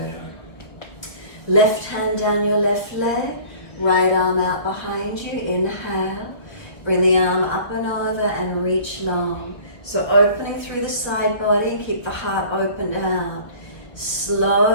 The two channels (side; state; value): right; late; 1.0 ms